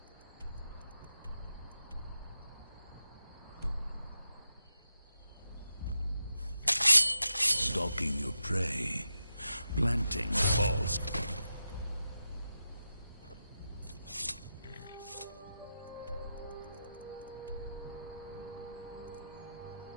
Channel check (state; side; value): inverted; both; correlation -0.89